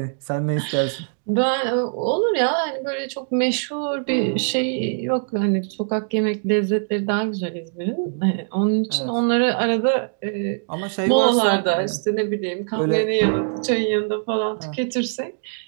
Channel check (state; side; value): silent; left; digital silence